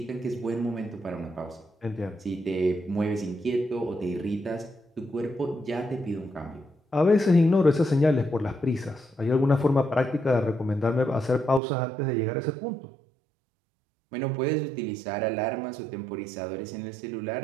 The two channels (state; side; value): drops out; left; at 11.6 s